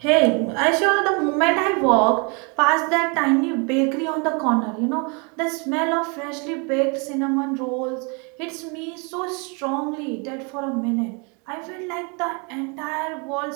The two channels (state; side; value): quieter; left; 33.0 dB